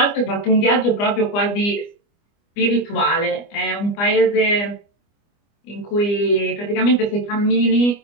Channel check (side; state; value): right; late; 25 ms